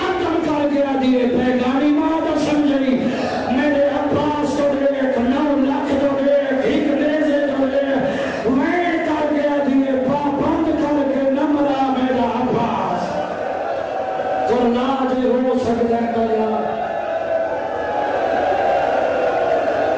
کر گیا دیئے اللہ جو ہو سکتا ہے کیا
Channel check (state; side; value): identical; both; correlation 1.00